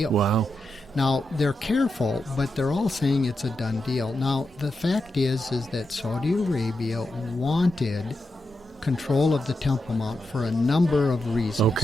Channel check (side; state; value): both; normal; correlation 0.87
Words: Wow. Now, they're careful, but they're all saying it's a done deal. Now, the fact is that Saudi Arabia wanted control of the Temple Mount for a number of reasons.